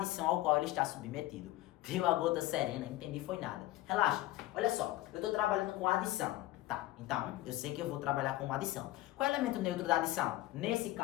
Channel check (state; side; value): quieter; right; 16.4 dB